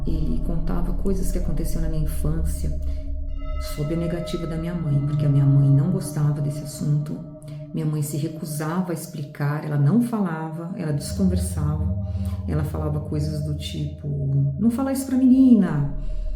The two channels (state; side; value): identical; both; correlation 1.00